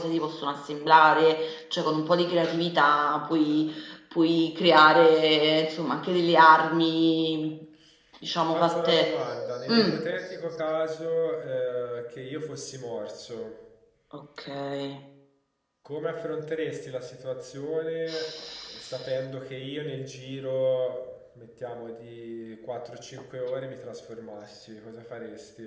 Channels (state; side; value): identical; both; correlation 1.00